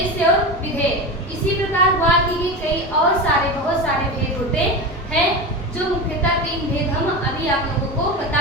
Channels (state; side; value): normal; both; correlation 0.23